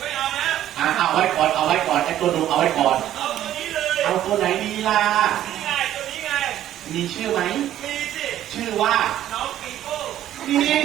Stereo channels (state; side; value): quieter; left; 12.2 dB